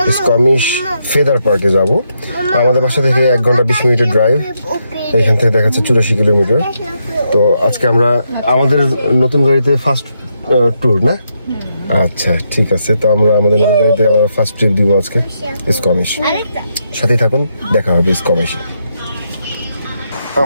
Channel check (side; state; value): both; inverted; correlation -0.80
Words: স্কমিশ ফেদার পার্কে যাব। আমাদের বাসা থেকে 1 ঘন্টা 20 মিনিটের ড্রাইভ। এখান থেকে দেখাচ্ছে 84 কিলোমিটার। তো আজকে আমরা আমাদের নতুন গাড়িতে ফার্স্ট ট্যুর না? আচ্ছা ঠিক আছে, তো আমরা আমাদের নতুন গাড়িতে আবার ফার্স্ট ট্রিপ দিব আজকে স্কমিশ। সাথেই থাকুন, দেখা হবে স্কমিশে।